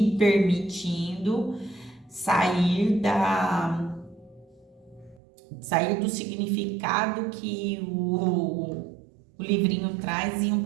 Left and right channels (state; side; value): drops out; left; at 5.2 s